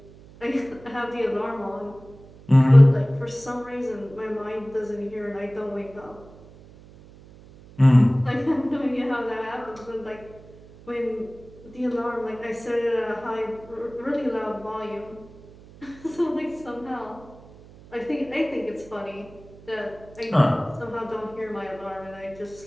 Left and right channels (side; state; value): right; noise; hum, 21 dB below the sound